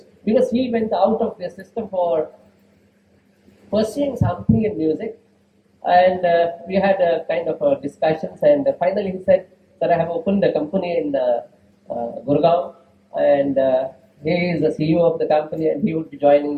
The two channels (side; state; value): both; identical; correlation 1.00